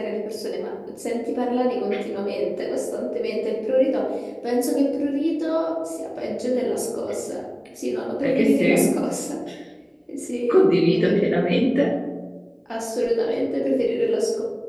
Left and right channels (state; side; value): identical; both; correlation 1.00